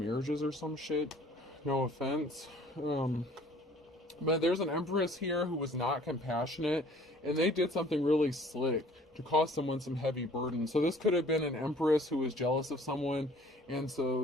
or some shit? No offense. But there's an Empress here who was not compassionate, and they did something really slick to cause someone some heavy burden. So this could have been an Empress who was jealous of someone, and so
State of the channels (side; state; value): both; normal; correlation 0.53